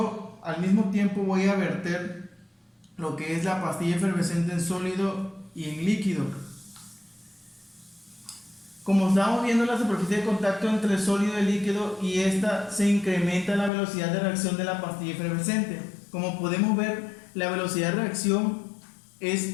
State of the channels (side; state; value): right; drops out; at 13.7 s